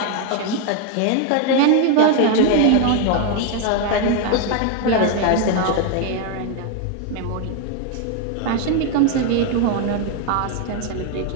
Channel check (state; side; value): different; both; correlation 0.01